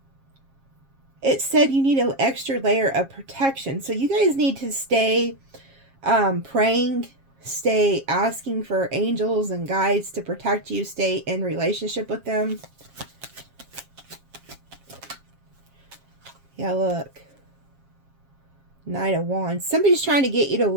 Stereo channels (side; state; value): left; late; 7.4 ms